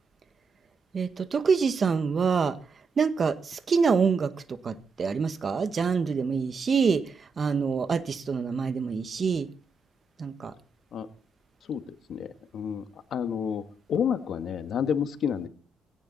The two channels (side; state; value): left; quieter; 3.2 dB